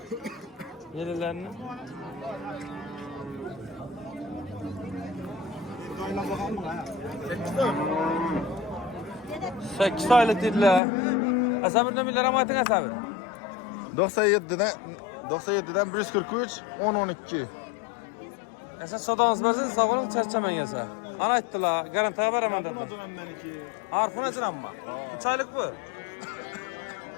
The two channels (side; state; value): right; drops out; at 10.8 s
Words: Yellarni. Sekiz aylık dediler. Asabir nömerleri ama ayting Asabir. 97'den 143 10-12. Esa sodağınız bazı sağolun çarçaman yasa. Ana ayttılar, garantiya beraman dediler. Harfın açın amma. 3 aylık bu.